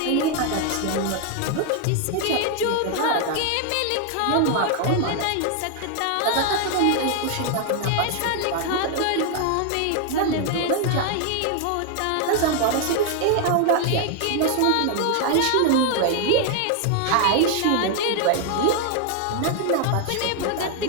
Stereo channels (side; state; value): both; different; correlation 0.00